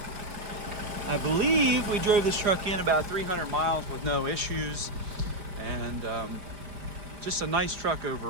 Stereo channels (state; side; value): late; left; 5.2 ms